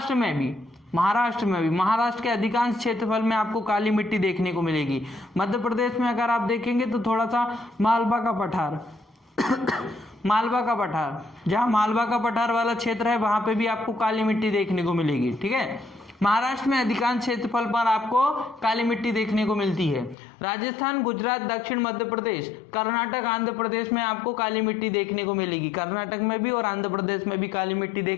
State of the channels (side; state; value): right; drops out; at 20.2 s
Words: में भी महाराष्ट्र के अधिकांश क्षेत्रफल में आपको काली मिट्टी देखने को मिलेगी। मध्य प्रदेश में अगर आप देखेंगे तो थोड़ा सा मालवा का पठार मालवा का पठार, जहाँ मालवा का पठार वाला क्षेत्र है वहां पे भी आपको काली मिट्टी देखने को मिलेगी। ठीक है, महाराष्ट्र में अधिकांश क्षेत्रफल पर आपको काली मिट्टी देखने को मिलती है। राजस्थान, गुजरात, दक्षिण मध्य प्रदेश, कर्नाटक, आंध्र प्रदेश में आपको काली मिट्टी देखने को मिलेगी। कर्नाटक में भी और आंध्र प्रदेश में भी काली मिट्टी